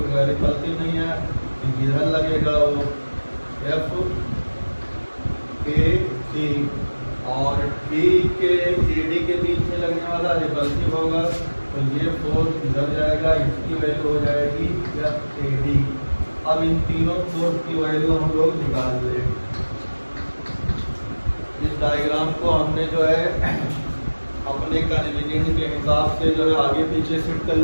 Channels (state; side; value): inverted; both; correlation -1.00